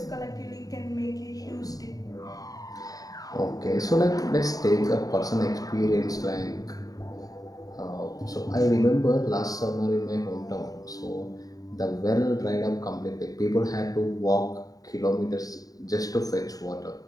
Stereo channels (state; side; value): late; right; 0.18 ms